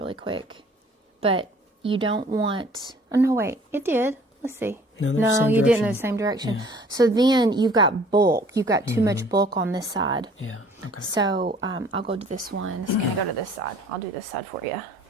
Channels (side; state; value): both; normal; correlation 0.53